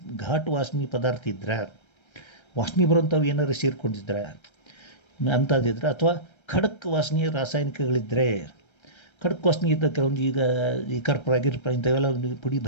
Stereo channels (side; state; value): right; late; 1.3 ms